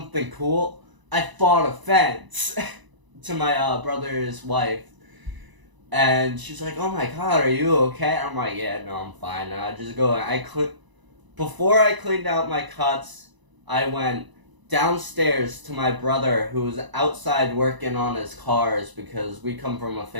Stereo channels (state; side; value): late; left; 1.0 ms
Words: cool? I fought a fence to my brother's wife. And she's like, oh my god, are you okay? I'm like, yeah, no, I'm fine. I just go, before I cleaned out my cuts, I went downstairs to my brother, who was outside working on his cars, because we come from a